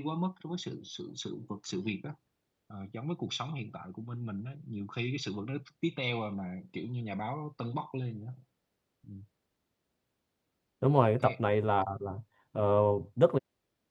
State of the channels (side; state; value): both; identical; correlation 1.00